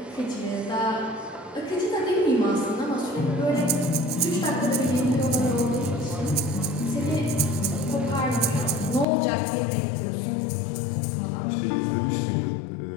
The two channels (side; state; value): right; drops out; at 9.1 s